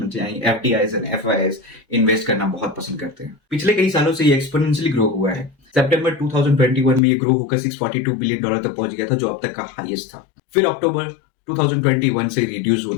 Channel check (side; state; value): right; drops out; at 7.0 s